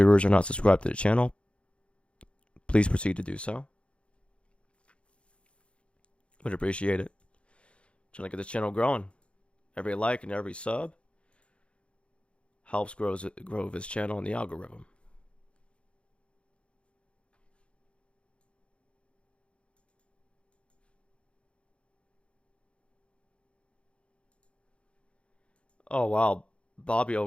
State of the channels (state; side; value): late; right; 0.059 ms